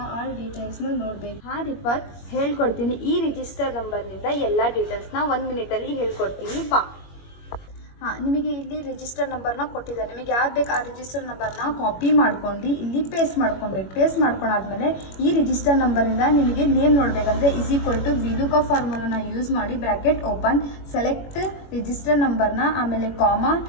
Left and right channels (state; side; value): late; right; 21 ms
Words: ಆಲ್ ಡೀಟೇಲ್ಸ್ನ ನೋಡಬೇಕು. ಹಾಂ ರಿಫಾತ್, ಹೇಳ್ಕೊಡ್ತೀನಿ. ಈ ರಿಜಿಸ್ಟರ್ ನಂಬರ್ನಿಂದ ಎಲ್ಲ ಡೀಟೇಲ್ಸ್ನ 1 ಮಿನಿಟಲ್ಲಿ ಹೇಳ್ಕೊಡ್ತೀನಿ. ಬಾ. ಹಾಂ, ನಿಮಗೆ ಇಲ್ಲಿ ರಿಜಿಸ್ಟರ್ ನಂಬರ್ನ ಕೊಟ್ಟಿದ್ದಾರೆ. ನಿಮಗೆ ಯಾವ್ದು ಬೇಕು ಆ ರಿಜಿಸ್ಟರ್ ನಂಬರ್ನ ಕಾಪಿ ಮಾಡ್ಕೊಂಡು ಇಲ್ಲಿ ಪೇಸ್ಟ್ ಮಾಡ್ಕೊಬೇಕು. ಪೇಸ್ಟ್ ಮಾಡ್ಕೊಂಡಾದ್ಮೇಲೆ ಈ ರಿಜಿಸ್ಟರ್ ನಂಬರಿಂದ ನಿಮಗೆ ನೇಮ್ ನೋಡಬೇಕಂದ್ರೆ =VLOOKUP ಫಾರ್ಮುಲಾನ ಯೂಸ್ ಮಾಡಿ ಬ್ರ್ಯಾಕೆಟ್ ಓಪನ್, ಸೆಲೆಕ್ಟ್ ರಿಜಿಸ್ಟರ್ ನಂಬರ್ನ, ಆಮೇಲೆ ಕಾಮಾ,